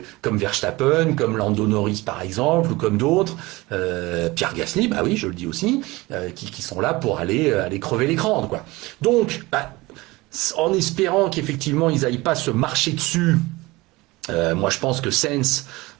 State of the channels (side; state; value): left; quieter; 21.5 dB